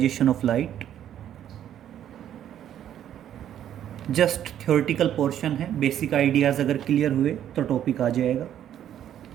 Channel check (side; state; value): left; quieter; 10.6 dB